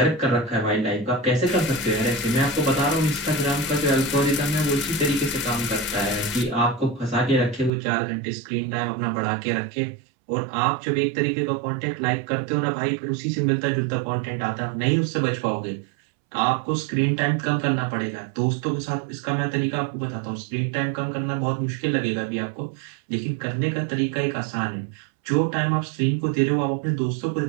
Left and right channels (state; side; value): drops out; left; at 7.7 s